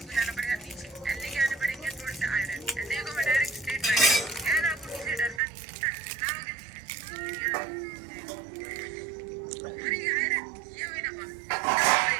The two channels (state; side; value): drops out; left; at 5.4 s